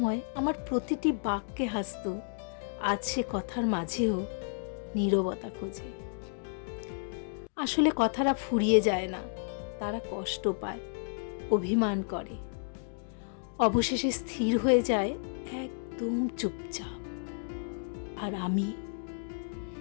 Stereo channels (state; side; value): silent; right; digital silence